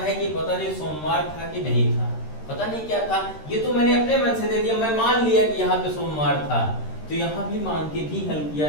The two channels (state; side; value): late; right; 13 ms